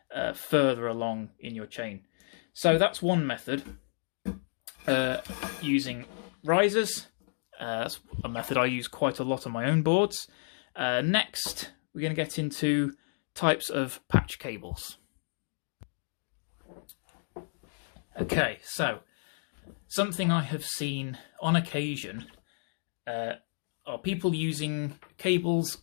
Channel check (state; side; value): silent; right; digital silence